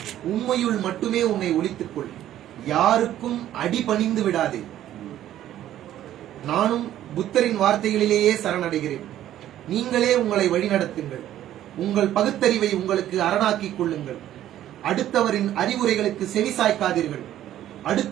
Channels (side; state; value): left; quieter; 12.3 dB